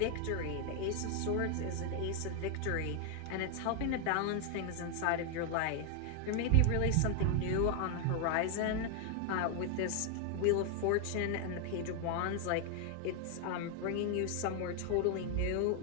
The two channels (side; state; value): both; different; correlation 0.00